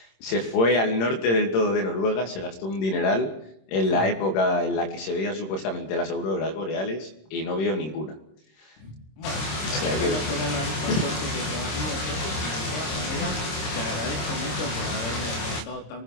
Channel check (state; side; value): late; right; 26 ms